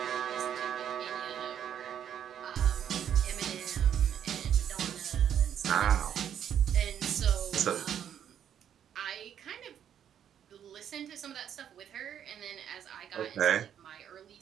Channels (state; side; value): quieter; left; 9.3 dB